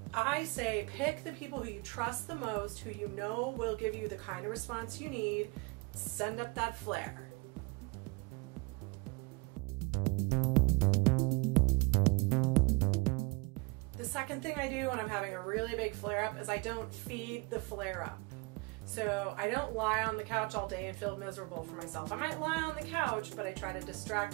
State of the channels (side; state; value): left; quieter; 26.8 dB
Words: I say pick the people who you trust the most, who you know will give you the kind of response you need. Send up that flare. The second thing I do when I'm having a really big flare-up is I don't feed the flare-up. So I don't lie on the couch all day and feel miserable for myself. I might lie on the couch, but I try to